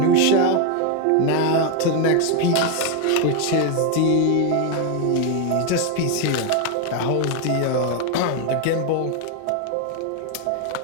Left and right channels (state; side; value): different; both; correlation 0.01